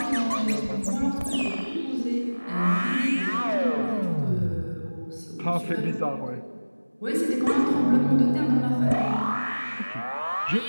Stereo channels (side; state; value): both; inverted; correlation -1.00